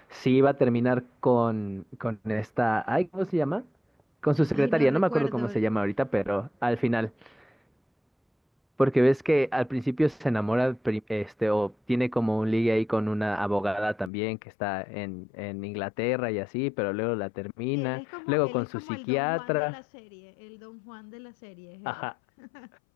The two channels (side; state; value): right; drops out; at 14.1 s